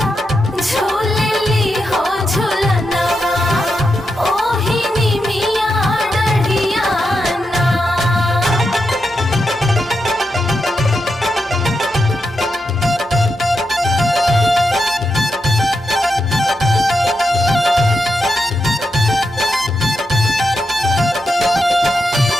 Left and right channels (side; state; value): both; normal; correlation 0.86